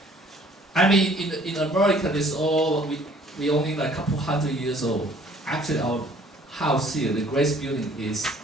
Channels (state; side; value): normal; both; correlation 0.57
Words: I mean, in America, this all we only like a couple hundred years old. Actually, our house here, the Grace Building, is